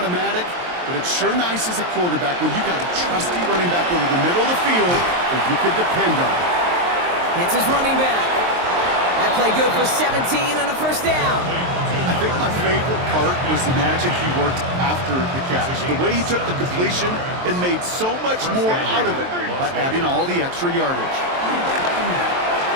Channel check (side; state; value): left; late; 23 ms